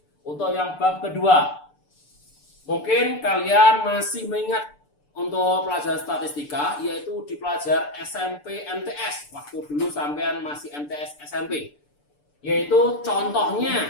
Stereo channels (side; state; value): right; late; 6.8 ms